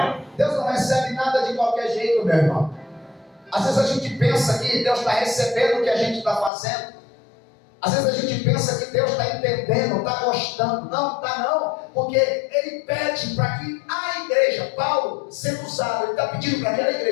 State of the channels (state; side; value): drops out; right; at 6.5 s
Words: Deus não recebe nada de qualquer jeito, meu irmão. Às vezes a gente pensa que Deus está recebendo o que a gente está fazendo. Às vezes a gente pensa que Deus está entendendo, está gostando. Não, está não. Porque Ele pede para que a igreja, Paulo, sendo usado, Ele está pedindo para que aquela